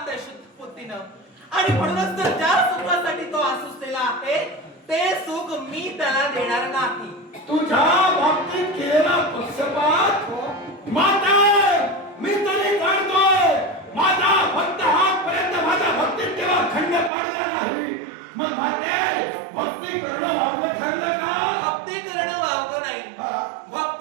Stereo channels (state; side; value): drops out; left; at 17.1 s